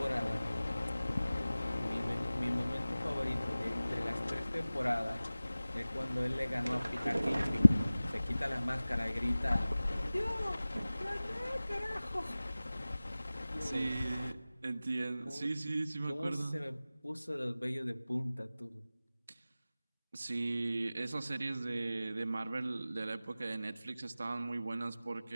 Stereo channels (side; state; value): both; inverted; correlation -0.97